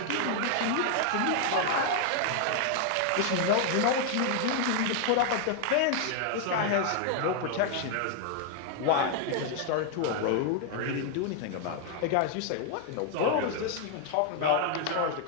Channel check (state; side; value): different; both; correlation 0.00